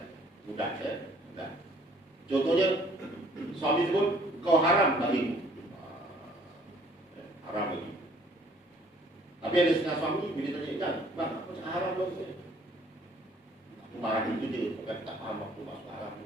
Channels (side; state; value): both; normal; correlation 0.59